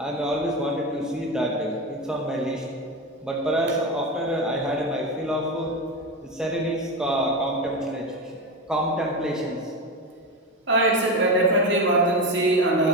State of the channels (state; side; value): normal; both; correlation 0.19